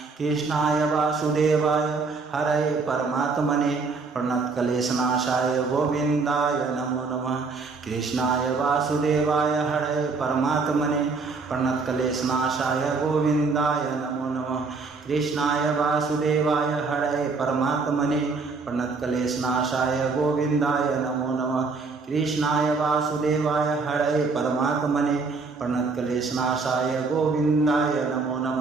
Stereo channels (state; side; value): quieter; left; 4.3 dB